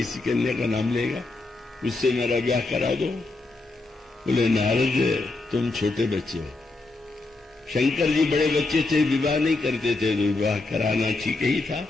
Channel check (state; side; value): quieter; right; 3.3 dB